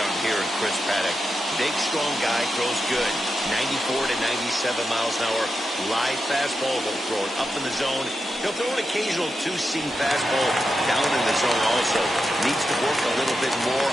here in Chris Paddock. Big, strong guy, throws good. 94 to 97 miles an hour. Live fastball, he'll throw it up in the zone. He'll throw an occasional 2-seam fastball down in the zone also. Needs to work a little bit more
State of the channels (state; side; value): normal; both; correlation 0.88